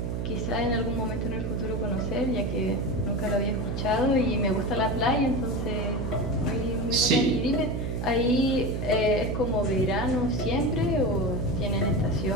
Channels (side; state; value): right; noise; hum, 2 dB below the sound